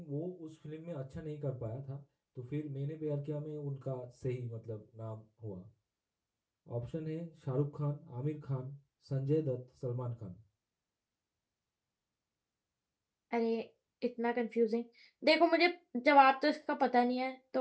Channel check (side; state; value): both; identical; correlation 1.00